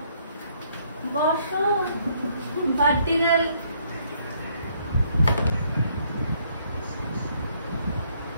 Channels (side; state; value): both; inverted; correlation -0.68